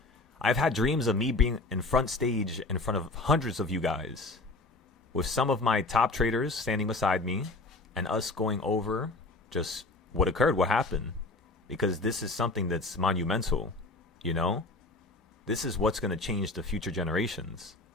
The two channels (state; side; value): quieter; right; 3.1 dB